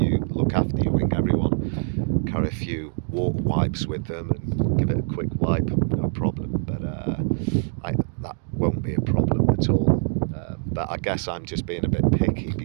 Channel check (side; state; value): left; silent; digital silence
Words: look after your wing, everyone carry a few water wipes with them and give it a quick wipe, no problem. But that won't be a problem at all. But I guess I'm just being a bit picky